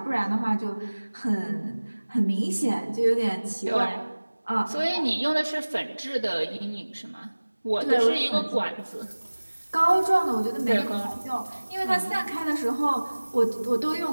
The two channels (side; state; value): both; inverted; correlation -1.00